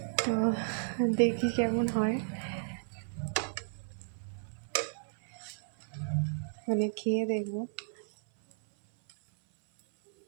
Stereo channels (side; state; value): left; silent; 56 dB below the other